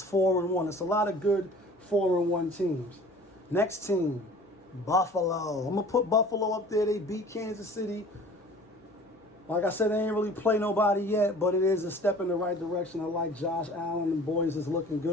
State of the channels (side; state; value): both; normal; correlation 0.46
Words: 4-1. It's a lot of good 4-1 teams. Next team, Buffalo. I'm going to put Buffalo up there. They beat Kansas City. Like I said, they ain't really play nobody yet, but it is a step in the right direction. I like Josh Allen and boys is looking